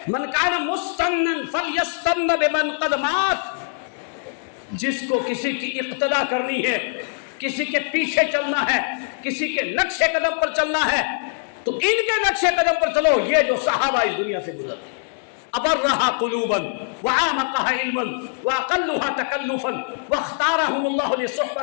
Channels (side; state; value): right; silent; digital silence